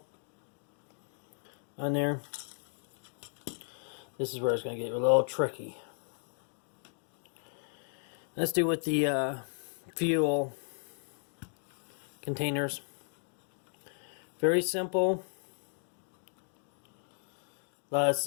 on there. This is where it's going to get a little tricky. Let's do with the fuel containers. Very simple. I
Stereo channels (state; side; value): silent; right; 54 dB below the other